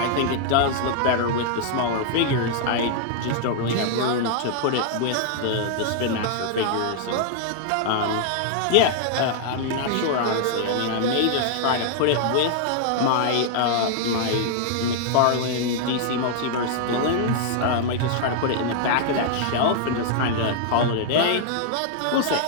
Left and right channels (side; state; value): both; different; correlation -0.01